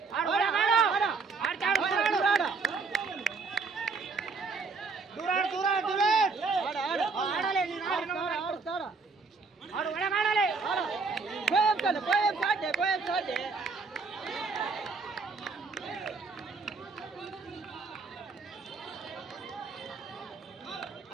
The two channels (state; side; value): quieter; left; 4.4 dB